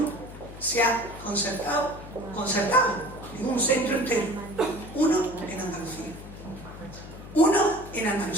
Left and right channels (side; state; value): left; noise; hum, 14 dB below the sound